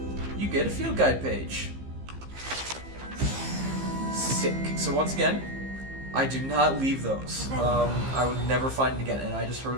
you get a field guide page. Sick. So once again, I do not leave those. I would never find it again, and I just heard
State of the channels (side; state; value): left; late; 15 ms